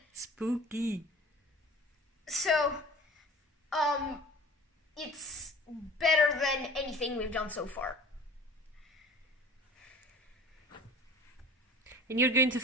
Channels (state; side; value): normal; both; correlation 0.43